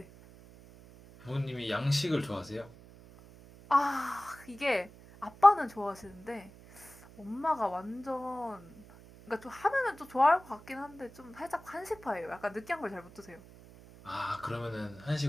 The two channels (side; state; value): right; noise; hum, 20 dB below the sound